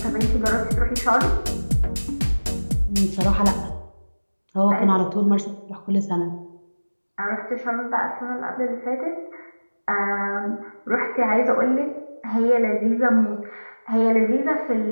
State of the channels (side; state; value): both; inverted; correlation -1.00